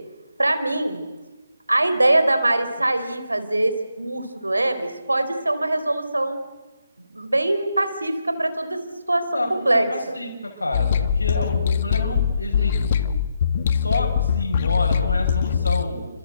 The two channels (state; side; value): inverted; both; correlation -0.82